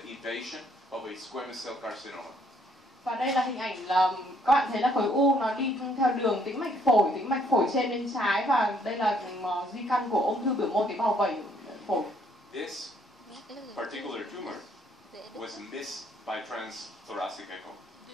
invasion of a squamous cell carcinoma. Và đây là hình ảnh là các bạn thấy là khối u nó đi theo đường tĩnh mạch phổi trên bên trái, và đây là di căn của ung thư biểu mô tế bào vẩy phổi. This particular tumor was missed by transthoracic echo.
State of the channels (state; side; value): normal; both; correlation 0.67